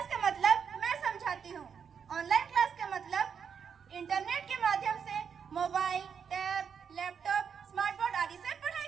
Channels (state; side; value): quieter; left; 6.9 dB